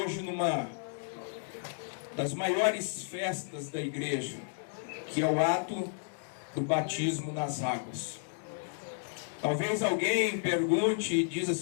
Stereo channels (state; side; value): silent; right; digital silence